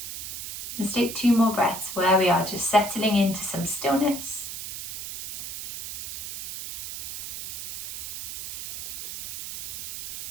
Let's take 2 more breaths where we are, just settling into some stillness.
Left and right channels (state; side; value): noise; right; hiss, 8 dB below the sound